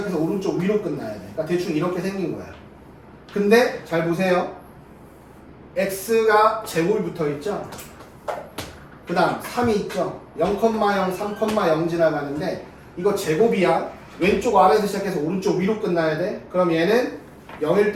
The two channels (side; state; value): both; identical; correlation 1.00